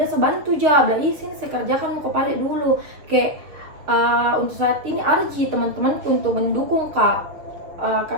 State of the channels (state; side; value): late; left; 6.4 ms